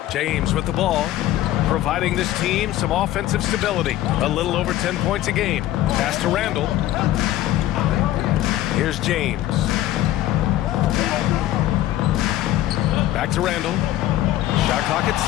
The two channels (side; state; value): right; quieter; 14.0 dB